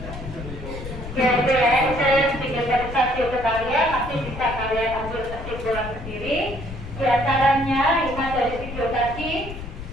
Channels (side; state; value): left; noise; rumble, 10 dB below the sound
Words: ya, saya sedikit verifikasi ke kalian, nanti bisa kalian ambil kesimpulan sendiri. Di antaranya, lima dari video tadi,